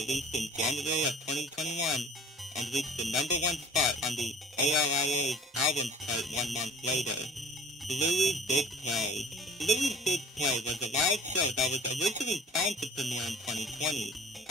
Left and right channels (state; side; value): normal; both; correlation 0.46